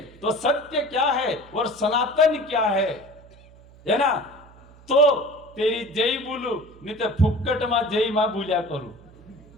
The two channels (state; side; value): noise; right; hum, 24 dB below the sound